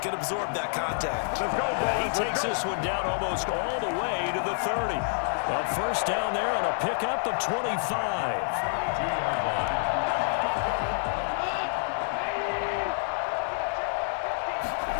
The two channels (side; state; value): right; silent; 59 dB below the other